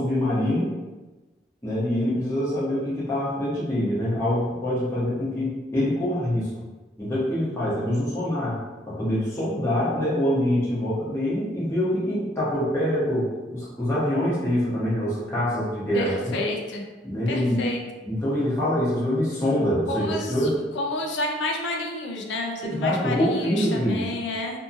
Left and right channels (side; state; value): both; normal; correlation 0.65